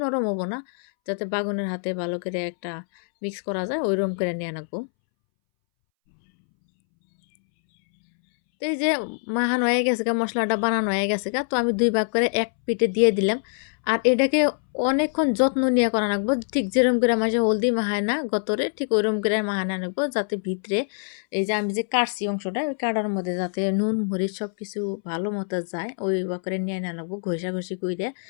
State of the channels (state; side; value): silent; right; 62 dB below the other